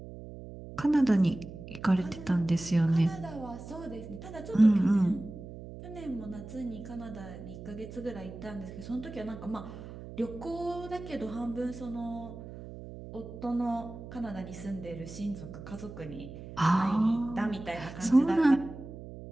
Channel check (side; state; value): right; noise; hum, 13 dB below the sound